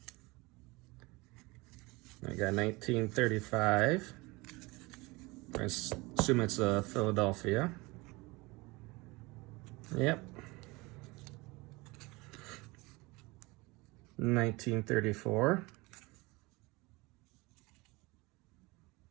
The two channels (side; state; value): left; quieter; 23.8 dB